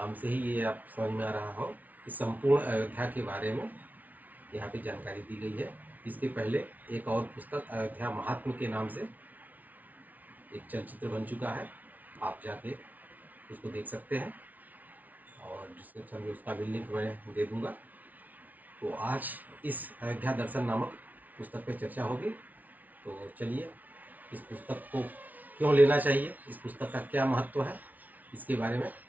से ही ये आप समझ में आ रहा हो कि संपूर्ण अयोध्या के बारे में यहाँ पे जानकारी दी गई है। इसके पहले एक और पुस्तक अयोध्या महात्म के नाम से एक चलचित्र बन चुका है, आप जाके उसको देख सकते हैं और डिस्क्रिप्शन में उसका भी लिंक मैं दे दूंगा। तो आज इस अयोध्या दर्शन नामक पुस्तक पे चर्चा होगी। तो चलिए इस पुस्तक को क्यों लेना चाहिए, इस पुस्तक का क्या महत्व है, इसके बारे में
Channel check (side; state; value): left; late; 0.076 ms